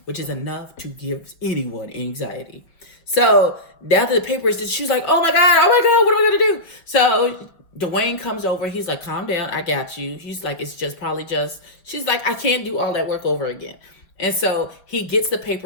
which is enough to give anyone anxiety. So now that the paper is, she's like, oh my God, what am I going to do? So Dwayne comes over. He's like, calm down. I got you. He's like, it's just probably just, she's like, I can't do all that work over again. And so he gets the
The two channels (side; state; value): right; late; 5.8 ms